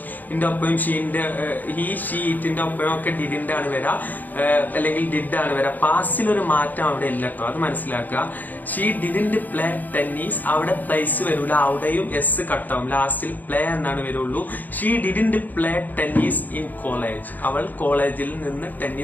ഒപ്പം ഹി, ഷീ, ഇറ്റിന്റെ ഒപ്പം ഒക്കെ ഡിഡിന്റ് ആണ് വരാ, അല്ലെങ്കിൽ ഡിഡ് ആണ് വരാ. പാസ്റ്റിൽ ഒരു മാറ്റം അവിടെ ഇല്ല കേട്ടോ, അത് മനസ്സിലാക്കുക. ഷീ ഡിഡിന്റ് പ്ലേ ടെന്നീസ്, അവിടെ പ്ലേസ് വരൂല, അവിടെയും എസ് കട്ടാവും. ലാസ്റ്റിൽ പ്ലേ എന്നാണ് വരുള്ളൂ. She didn't play tennis in college. അവൾ കോളേജിൽ നിന്ന്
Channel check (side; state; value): right; late; 0.084 ms